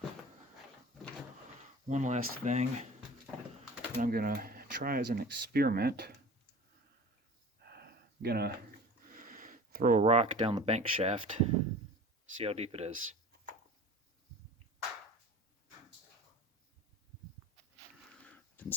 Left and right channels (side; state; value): both; normal; correlation 0.40